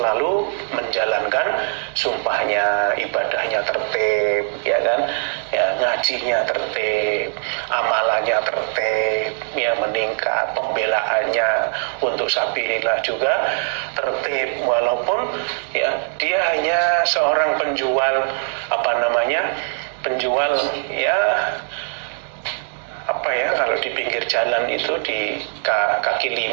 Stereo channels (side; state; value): left; silent; digital silence